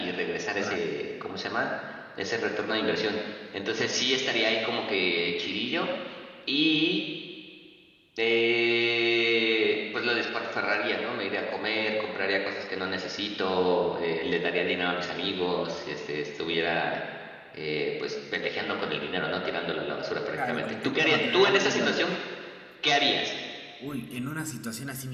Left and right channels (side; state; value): both; identical; correlation 1.00